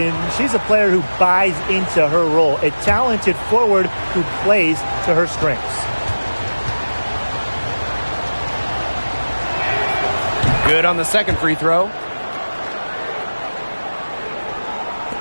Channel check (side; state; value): both; inverted; correlation -1.00